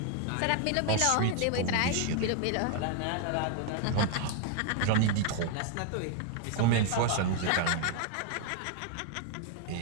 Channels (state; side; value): different; both; correlation 0.00